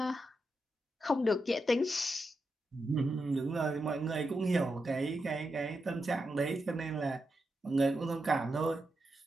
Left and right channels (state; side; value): normal; both; correlation 0.86